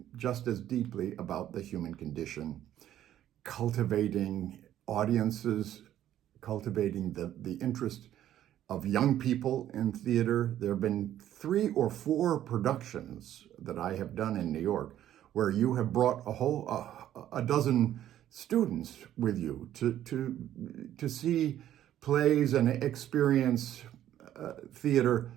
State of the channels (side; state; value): left; quieter; 11.9 dB